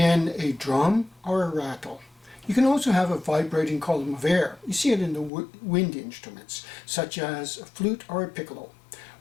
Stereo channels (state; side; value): drops out; right; at 5.3 s